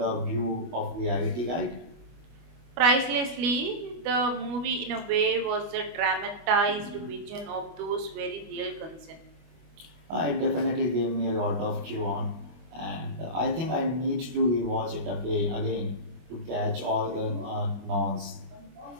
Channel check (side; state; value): left; late; 25 ms